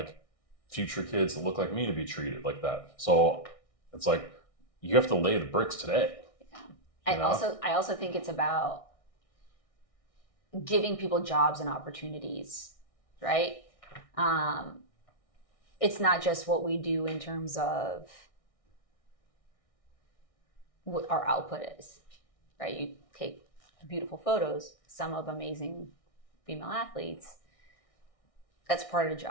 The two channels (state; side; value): late; right; 1.6 ms